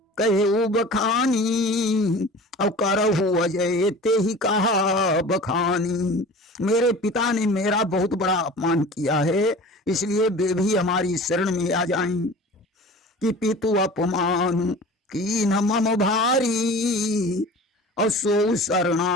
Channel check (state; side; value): normal; both; correlation 0.40